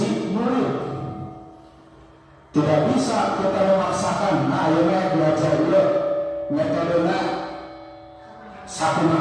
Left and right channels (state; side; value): identical; both; correlation 1.00